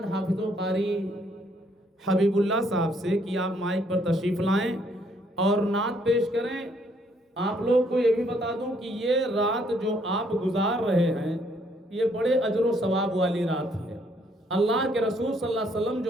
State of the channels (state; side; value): normal; both; correlation 0.68